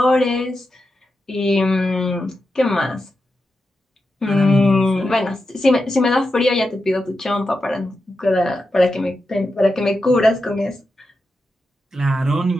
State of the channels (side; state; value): both; normal; correlation 0.89